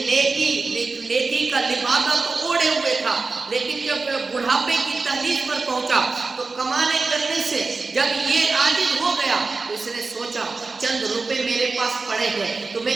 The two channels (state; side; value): quieter; left; 4.0 dB